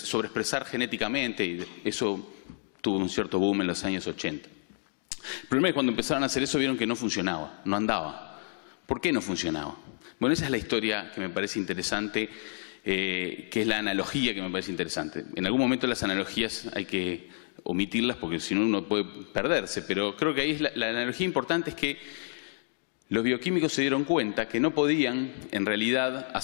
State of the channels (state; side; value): silent; right; digital silence